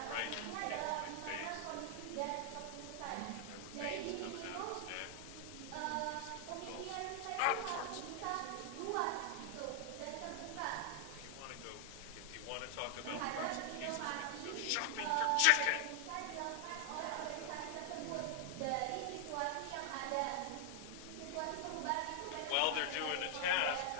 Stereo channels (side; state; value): both; different; correlation 0.00